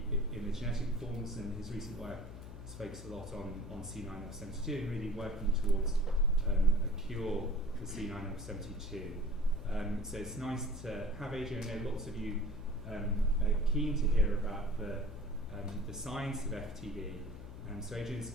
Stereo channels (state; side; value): noise; left; hum, 12 dB below the sound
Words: in the genetic forms, and his recent work has focused a lot on C9orf72 and really working towards a cure for C9orf72. So it's nice to have Adrian. I know lots of you are keen to hear about the science of FTD, so Adrian's